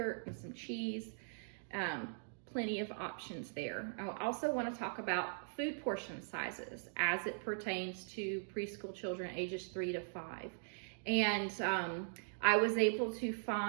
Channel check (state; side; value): silent; left; digital silence